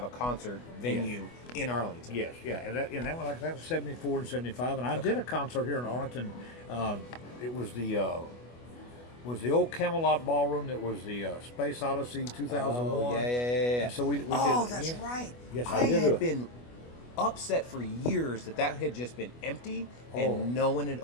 a concert venue in Arlington. Yes, yeah, and that was 74 and 75, and I did a concert here in Arlington. It was the old Camelot Ballroom. That was the Space Odyssey 2001. Oh, yeah. And so we did. That's right. Yes, I had been upset for years that had just been empty and no one had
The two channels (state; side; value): late; right; 25 ms